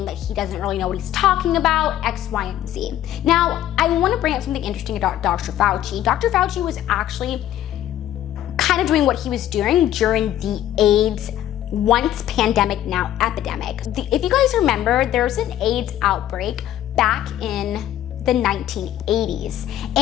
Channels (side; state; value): right; quieter; 12.2 dB